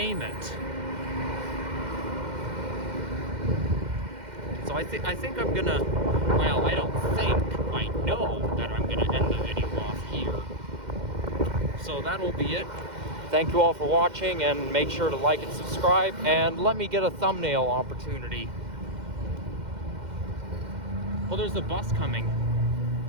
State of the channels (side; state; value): left; late; 2.1 ms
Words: it. So I think I'm gonna, well, I don't think, I know that I'm gonna end the video off here. So that'll be it. Thank you all for watching, and make sure to like and subscribe, and let me get a thumbnail opportunity. Well, there's a bus coming.